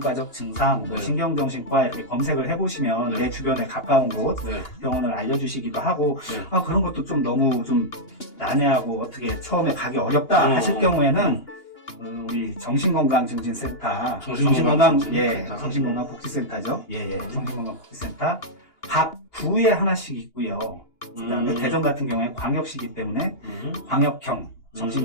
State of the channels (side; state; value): right; late; 2.8 ms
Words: 증상, 뭐 신경정신과 이렇게 검색을 해보시면 내 주변에 가까운 곳 병원을 알려주시기도 하고 그런 것도 좀 너무 좀 난해하고 어떻게 처음에 가기 어렵다 하실 경우에는 우리 정신건강증진센터, 정신건강복지센터죠. 정신건강복지센터 각 구에 하나씩 있고요. 그다음에 대전 같은 경우에 광역시기 때문에 광역형